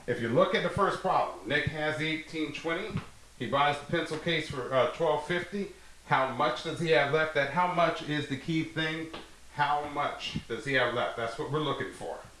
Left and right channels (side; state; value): both; identical; correlation 1.00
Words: If you look at the first problem, Nick has the $18.20. He buys the pencil case for $12.50. How much does he have left? That how much is the key thing. How much does he have left? That's what we're looking for.